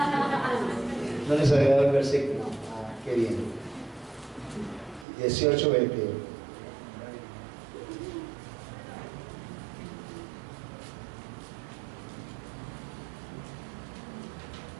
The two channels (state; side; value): drops out; left; at 5.1 s